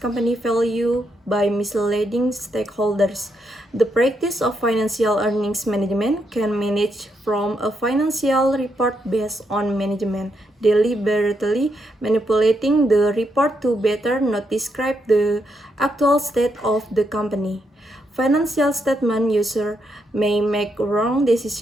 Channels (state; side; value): normal; both; correlation 0.80